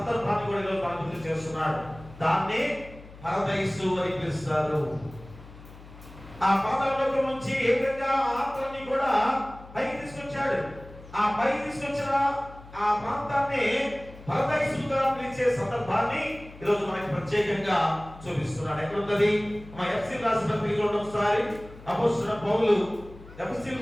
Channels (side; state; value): left; noise; hum, 18 dB below the sound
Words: కూడా ఈరోజు మనం గుర్తు చేస్తున్నాడు. దాన్ని పరదైసు అని పిలుస్తారు. ఆ పాతాళంలో నుంచి ఏ విధంగా ఆత్మని కూడా పైకి తీసుకొచ్చాడు. ఆ పైకి తీసుకొచ్చిన ఆ ప్రాంతాన్ని పరదైసుగా పిలిచే సందర్భాన్ని ఈరోజు మనకి ప్రత్యేకంగా చూపిస్తున్నాడు. ఎక్కడున్నది? మా ఎఫ్ఎస్సీయులకు రాసిన పత్రిక ఒకసారి అపోస్తలుడైన పౌలు